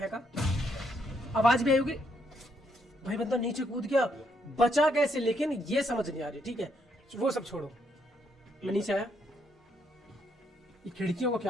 आवाज भी आई होगी। भाई बंदा नीचे कूद गया, बचा कैसे लेकिन ये समझ नहीं आ रही। ठीक है वो सब छोड़ो, मैं नीचे आया, ये खिड़कियों को क्या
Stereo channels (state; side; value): normal; both; correlation 0.74